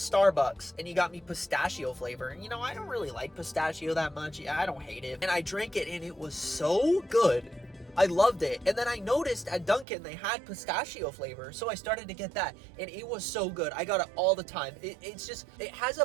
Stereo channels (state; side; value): drops out; left; at 9.9 s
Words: and he got me pistachio flavor. And you know, I don't really like pistachio that much. Yeah, I don't hate it. And I drank it and it was so good. I loved it. And then I noticed at Dunkin' they had pistachio flavor, so I started to get that, and it was so good. I got it all the time. It's just, it has a